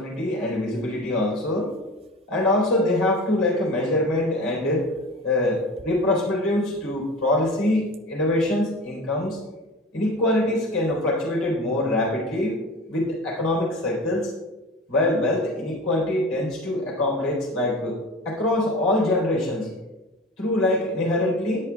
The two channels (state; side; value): normal; both; correlation 0.34